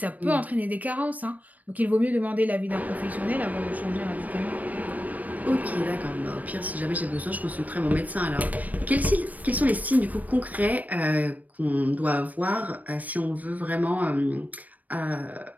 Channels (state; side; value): late; left; 0.075 ms